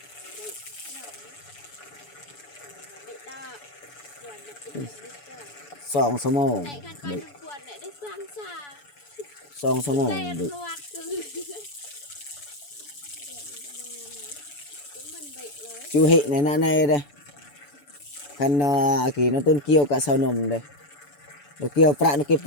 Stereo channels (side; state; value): right; late; 7.0 ms